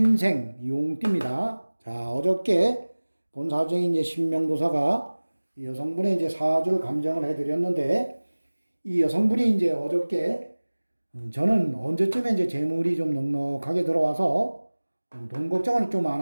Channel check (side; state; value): both; inverted; correlation -1.00